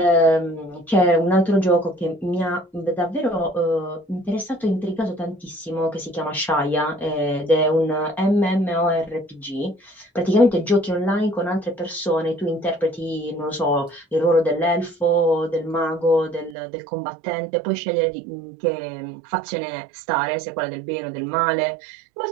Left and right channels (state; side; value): drops out; left; at 16.6 s